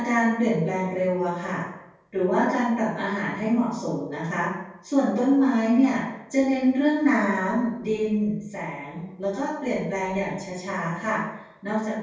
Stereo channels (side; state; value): both; identical; correlation 1.00